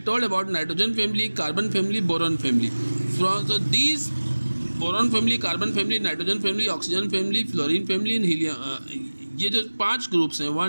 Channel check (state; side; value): inverted; both; correlation -1.00